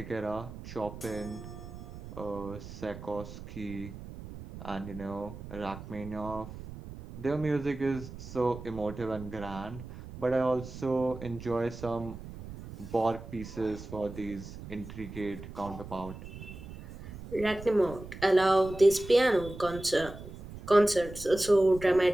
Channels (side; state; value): right; noise; rumble, 13 dB below the sound